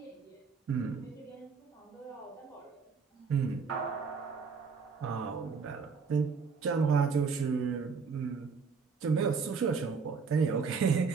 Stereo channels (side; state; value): left; quieter; 5.3 dB